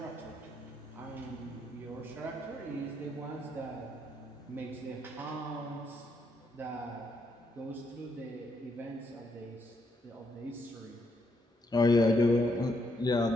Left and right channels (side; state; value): both; normal; correlation 0.76